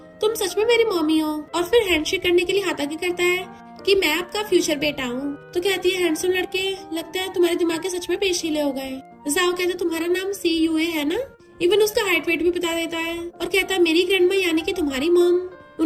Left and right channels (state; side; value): identical; both; correlation 1.00